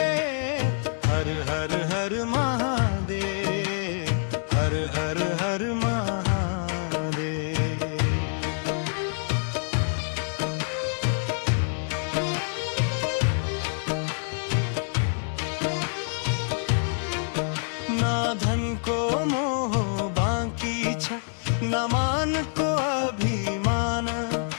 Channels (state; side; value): silent; right; digital silence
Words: हर हर हर महादेव, हर हर हर महादेव। ना धन को मोह बाकी छ, न मान को अभिमान।